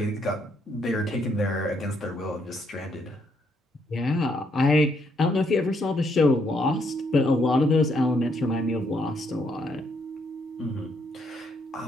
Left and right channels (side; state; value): both; normal; correlation 0.73